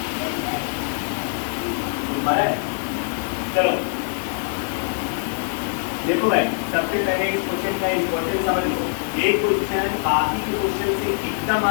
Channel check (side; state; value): right; silent; digital silence